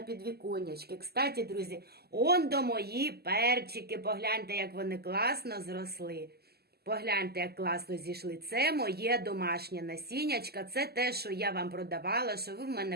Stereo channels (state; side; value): late; left; 0.46 ms